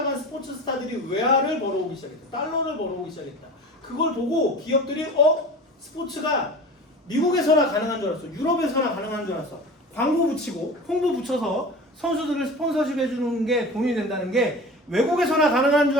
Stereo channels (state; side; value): normal; both; correlation 0.35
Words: 스포츠 스타들이 외화를 벌어오기 시작했다. 달러를 벌어오기 시작했다. 그걸 보고 기업들이 스포츠가 미국에서나 가능한 줄 알았어. 유럽에서나 가능한 줄 알았어. 광고 붙이고 홍보 붙여서 선수들을 스폰서십 해주는 게 돈이 된다는 게 외국에서나 가능한 줄